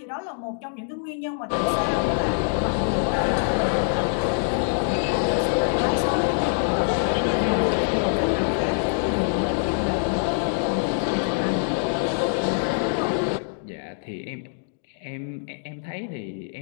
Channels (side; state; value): right; silent; digital silence